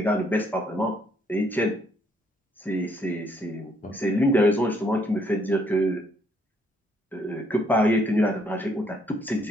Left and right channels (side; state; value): both; normal; correlation 0.68